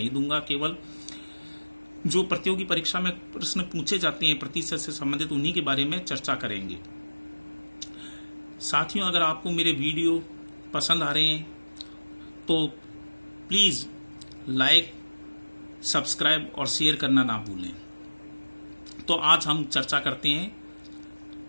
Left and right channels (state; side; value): inverted; both; correlation -1.00